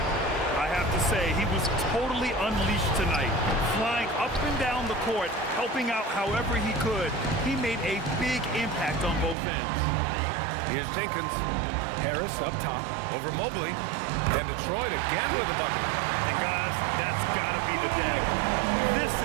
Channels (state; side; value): drops out; left; at 9.3 s